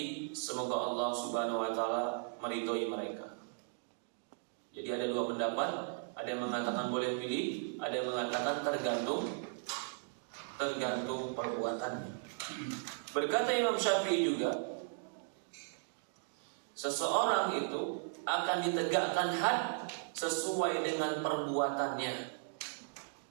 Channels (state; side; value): silent; left; digital silence